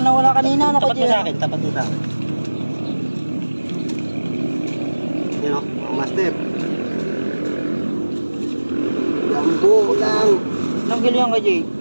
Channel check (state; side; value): inverted; both; correlation -1.00